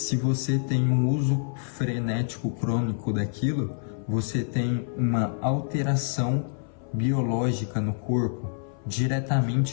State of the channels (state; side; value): silent; right; 60 dB below the other